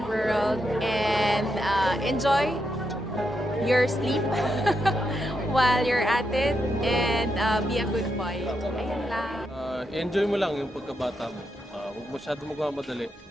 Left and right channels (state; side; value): normal; both; correlation 0.83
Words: world and enjoy your sleep while you're at it and be a good boy. Ayun lang. Enjoy mo lang yung pagkabata mo. Huwag masyado magmamadali.